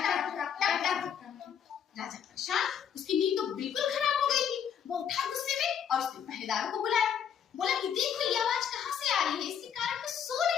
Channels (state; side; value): quieter; right; 8.3 dB